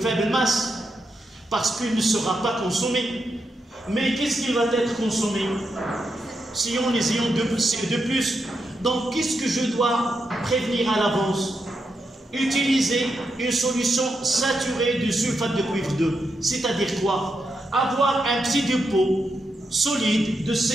masse parce qu'il ne sera pas consommé. Mais qu'est-ce qu'il va être consommé? Si on les ions de plus. Donc qu'est-ce que je dois prévenir à l'avance? Utiliser une solution saturée de sulfate de cuivre 2. C'est-à-dire quoi? Avoir un petit dépôt solide de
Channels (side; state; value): both; normal; correlation 0.84